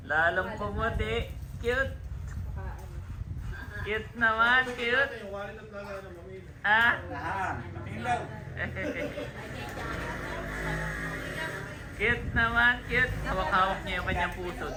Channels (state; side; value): identical; both; correlation 1.00